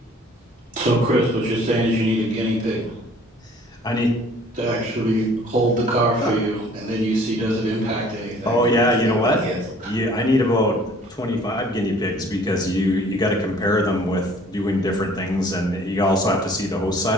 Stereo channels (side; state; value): both; normal; correlation 0.54